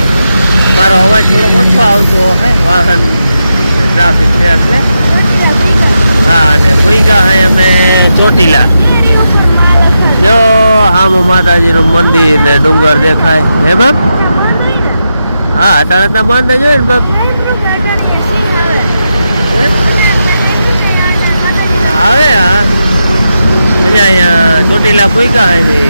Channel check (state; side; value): inverted; both; correlation -0.87